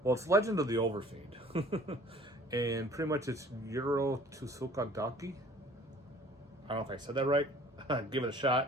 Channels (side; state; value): both; normal; correlation 0.51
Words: well, it's Legend of the Overfiend. And pretty much it's Yuro Tsukadaki. I don't know if I said that right. Give it a